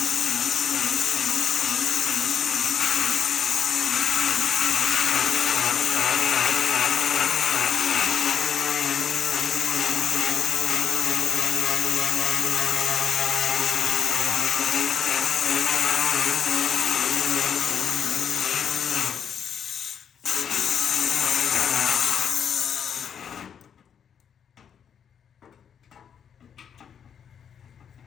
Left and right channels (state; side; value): quieter; right; 8.0 dB